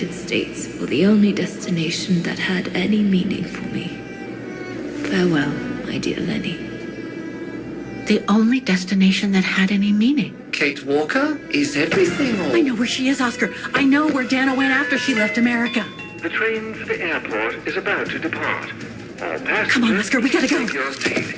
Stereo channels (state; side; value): identical; both; correlation 1.00